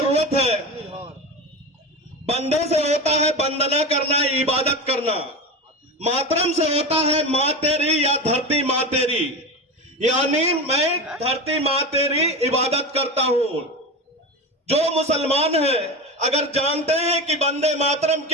है। वंदे से होता है वंदना करना, इबादत करना। मातरम से होता है मां तेरी या धरती मां तेरी, यानी मैं धरती मां तेरी इबादत करता हूं। जो मुसलमान है अगर जानते हैं कि वंदे मातरम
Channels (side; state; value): both; normal; correlation 0.24